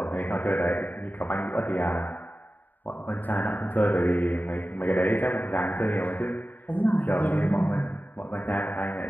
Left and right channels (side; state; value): right; late; 0.086 ms